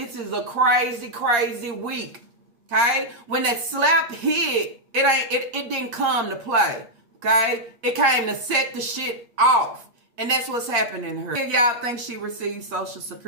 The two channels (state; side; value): late; left; 8.5 ms